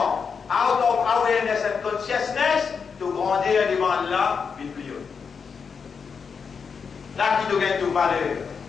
out of awareness and consciousness, tu grandis devant Allah, puis plus haut. Là qui te gagne toute valeur.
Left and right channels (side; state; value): right; quieter; 5.9 dB